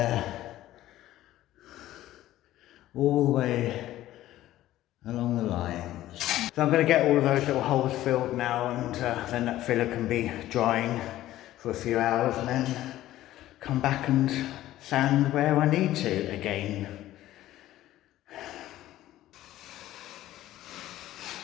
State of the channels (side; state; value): right; quieter; 14.4 dB